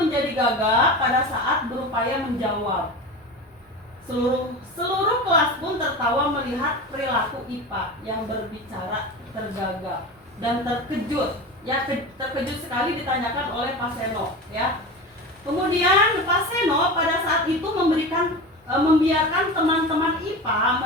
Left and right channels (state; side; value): normal; both; correlation 0.28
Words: gagap pada saat berupaya menjawab. Seluruh kelas pun tertawa melihat perilaku IPA yang berbicara tergagap dan terkejut. Ya, terkejut sekali ditanyakan oleh Pak Seno, ya. Kemudian Pak Seno pada saat itu membiarkan teman-teman IPA